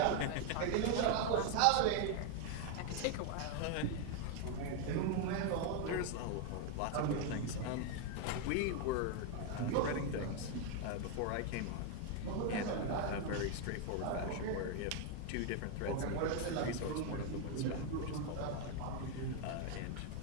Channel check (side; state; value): both; different; correlation 0.01